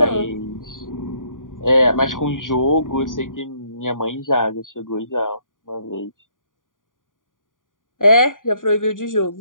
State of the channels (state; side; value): late; right; 0.89 ms